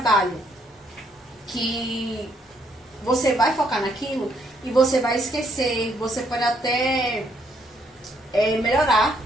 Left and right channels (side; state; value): both; normal; correlation 0.70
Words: Que você vai focar naquilo e você vai esquecer, você pode até melhorar